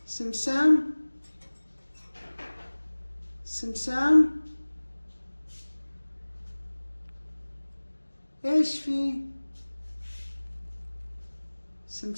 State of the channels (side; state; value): both; inverted; correlation -1.00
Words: سمسام. سمسام. ايش في؟